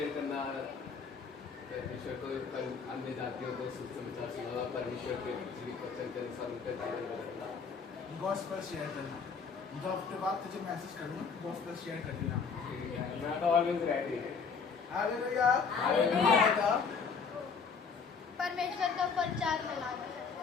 करना, परमेश्वर को अन्य जातियों को सुसमाचार सुनाना, परमेश्वर के जीवित वचन के अनुसार उनका जीवन बदलना। गॉस्पेल शेयर करना, मतलब हफ्ते बाद तुझे मैसेज करूँगा, गॉस्पेल शेयर कर देना। मैं तो ऑलवेज रेडी है। Hallelujah, hallelujah. परमेश्वर का प्रचार फैलाना।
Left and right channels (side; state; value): right; quieter; 5.5 dB